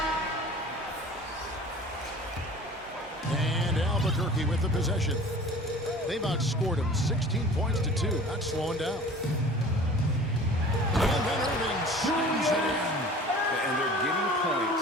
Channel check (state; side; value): normal; both; correlation 0.44